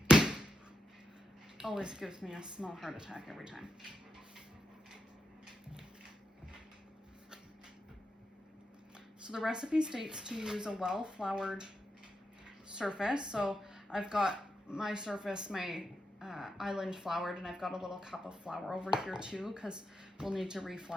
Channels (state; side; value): normal; both; correlation 0.85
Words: Always gives me a small heart attack every time. So the recipe states to use a well-floured surface. So I've got my surface, my island floured, and I've got a little cup of flour over here too, because we'll need to